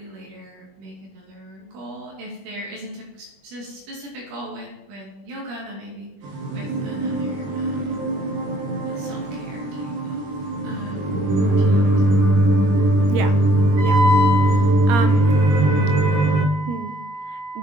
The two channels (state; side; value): late; left; 21 ms